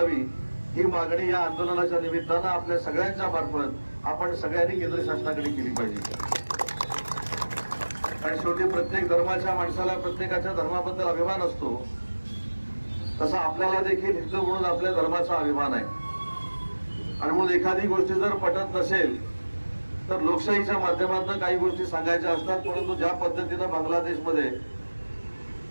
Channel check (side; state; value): both; inverted; correlation -1.00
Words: ही मागणी या आंदोलनाच्या निमित्तानं आपल्या सगळ्यांच्या मार्फत आपण सगळ्यांनी केंद्र शासनाकडे केली पाहिजे। आणि शेवटी प्रत्येक धर्माच्या माणसाला प्रत्येकाच्या धर्माबद्दल अभिमान असतो, तसा आपल्याला देखील हिंदू म्हणून आपल्या धर्माचा अभिमान आहे। आणि म्हणून एखादी गोष्ट जर पटत नसेल तर लोकशाहीच्या माध्यमातून काही गोष्टी सांगायच्या असतात, परंतु ज्या पद्धतीने बांगलादेशमध्ये